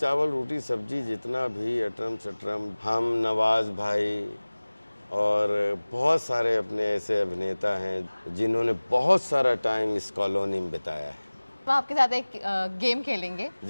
रोटी सब्जी, जितना भी अटरम शटरम। हम, नवाज भाई और बहुत सारे अपने ऐसे अभिनेता हैं जिन्होंने बहुत सारा टाइम इस कॉलोनी में बिताया है। तो आपके साथ एक गेम खेलेंगे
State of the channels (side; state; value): both; inverted; correlation -1.00